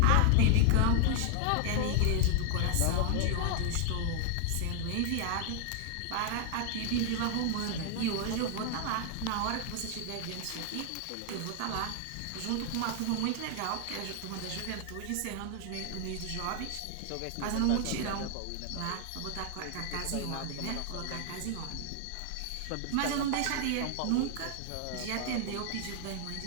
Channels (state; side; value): different; both; correlation 0.00